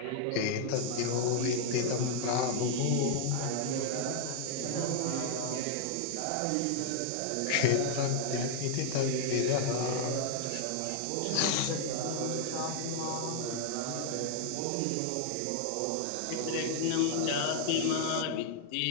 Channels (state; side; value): different; both; correlation 0.00